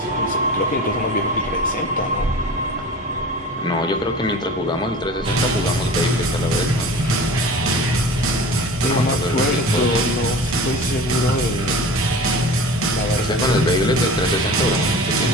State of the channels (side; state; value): both; normal; correlation 0.37